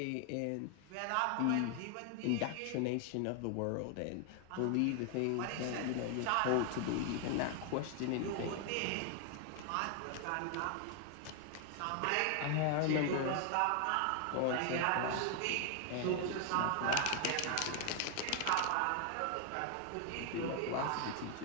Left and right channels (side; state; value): both; different; correlation 0.00